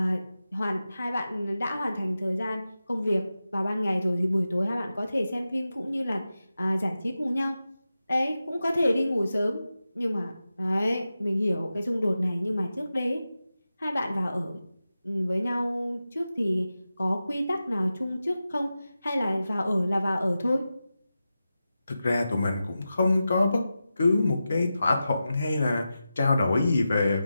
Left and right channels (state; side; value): inverted; both; correlation -0.92